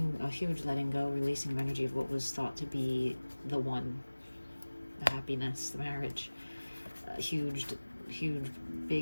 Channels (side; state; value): both; inverted; correlation -1.00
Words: a huge letting go, releasing of energy of what was thought to be the one, the happiness, the marriage. Huge,